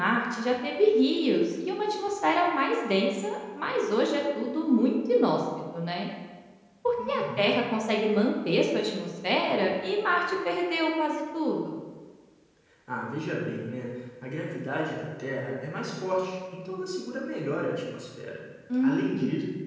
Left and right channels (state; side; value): identical; both; correlation 1.00